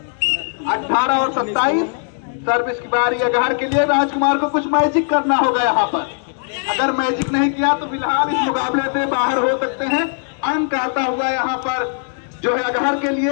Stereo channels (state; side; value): silent; right; 67 dB below the other